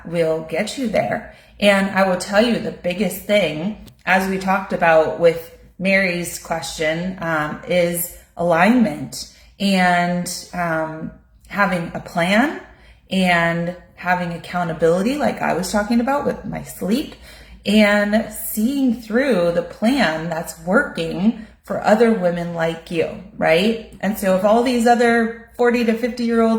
will get you there. And I will tell you the biggest thing, as we talked about with Mary's question, is alignment and having a plan and having accountability, like I was talking about with my sleep, and seeing through the plan that's working for other women like you, right? And so if all these other 40 to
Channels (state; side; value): identical; both; correlation 1.00